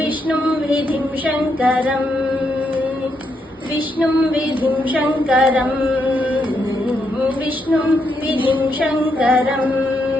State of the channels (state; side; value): normal; both; correlation 0.79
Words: విధిం శంకరం విష్ణుం విధిం శంకరం విష్ణుం విధిం శంకరం